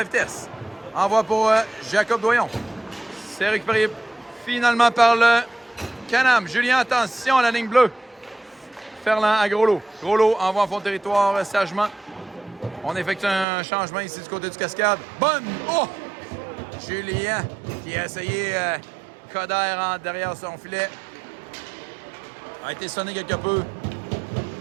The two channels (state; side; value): drops out; left; at 13.5 s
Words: vitesse. Envoie pour Jacob Doyon. C'est récupéré finalement par le Canam. Julien, attention à la ligne bleue. Ferland à Groslo. Groslo envoie en fond de territoire sagement. On effectue un changement ici du côté du Cascade. Bonne! Oh! Julien qui a essayé Coder derrière son filet. A été sonné quelque peu.